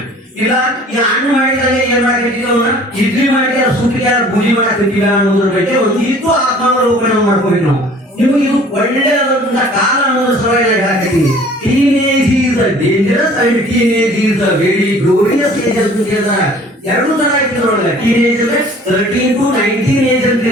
ಇಲ್ಲ. ಈ ಹಣ್ಣು ಮಾಡಿದಾಗ ಏನ್ ಮಾಡಕತ್ತೀವಿ, ಅವನ್ನ ಇಡ್ಲಿ ಮಾಡಿ ಸುಟ್ಟಿಗೆ ಪೂಜೆ ಮಾಡಕತ್ತೀವ ಅನ್ನೋದ್ರ ಬಗ್ಗೆ ಒಂದು ಇಟ್ಟು ಆತ್ಮಾವಲೋಕನ ಮಾಡ್ಕೋಬೇಕು ನಾವು. ನಿಮಗೆ ಇದು ಒಳ್ಳೆಯದಂತ ಕಾಲ ಅನ್ನೋದ್ರ ಸಲುವಾಗಿ ಹೇಳಕತ್ತೀನಿ. Teenage is dangerous and teenage is very glorious age ಅಂತ ಹೇಳ್ತಾರೆ. ಎರಡು ತರ ಇಟ್ಟಿದ್ರೊಳಗೆ ಟೀನೇಜ್ ಅಂದ್ರೆ 13 to 19 ಏಜ್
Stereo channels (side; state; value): both; normal; correlation 0.50